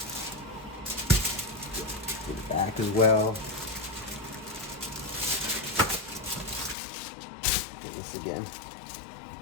Get it back as well. Get this again.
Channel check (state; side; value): drops out; right; at 6.8 s